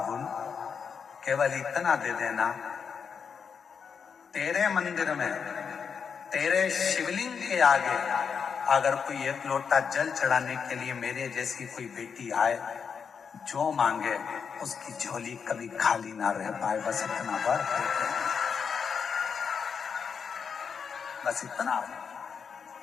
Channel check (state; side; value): quieter; right; 6.4 dB